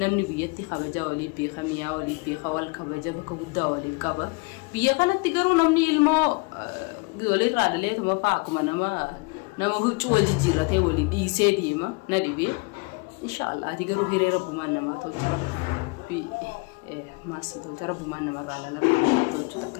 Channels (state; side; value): quieter; right; 29.5 dB